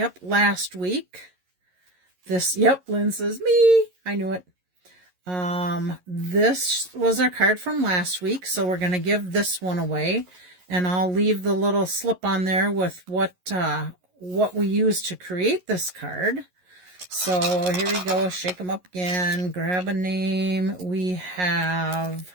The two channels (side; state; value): left; late; 11 ms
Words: last week. Yep, Lynn says, me. I knew it. This was our card from last week, so we're going to give this one away. And I'll leave the little slip on there with what we used to create this card. So here we go. Shake them up again. Grab a name. We have